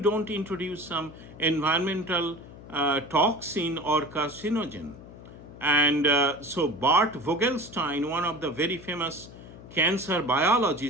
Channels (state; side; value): noise; left; hum, 17 dB below the sound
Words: introduce some environmental toxin or carcinogen. And so Bart Vogelstein, one of the very famous cancer